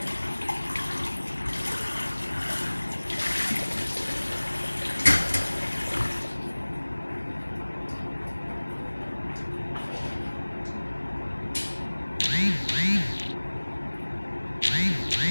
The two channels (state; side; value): inverted; both; correlation -1.00